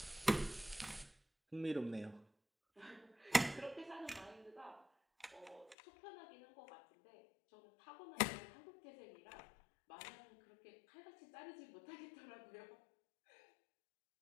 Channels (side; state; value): right; drops out; at 5.8 s